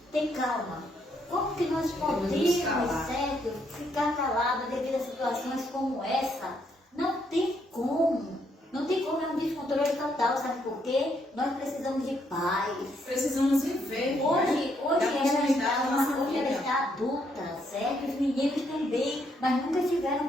ter calma? Como que nós podemos, certo, ficar calados devido a situações como essa? Não tem como. Não tem como, é um descontrole total, sabe por quê? Nós precisamos de paz. Precisamos viver. Hoje hoje ela está adulta, certo? Os meninos também, mas nunca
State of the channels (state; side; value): normal; both; correlation 0.73